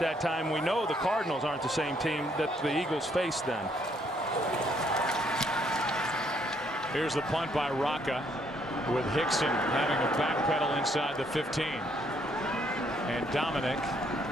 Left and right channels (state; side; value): normal; both; correlation 0.69